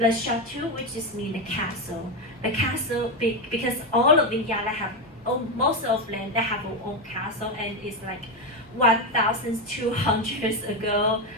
chateau, which is mean the castle. The castle big because all of Vineyard have most of them they have their own castle, and it's like 1,200 years ago.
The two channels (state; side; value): normal; both; correlation 0.11